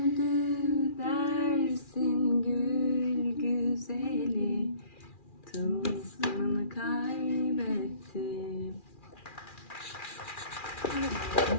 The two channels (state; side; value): late; right; 2.4 ms